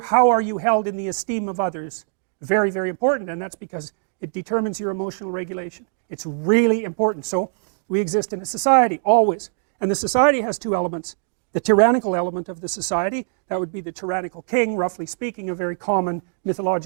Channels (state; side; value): silent; left; digital silence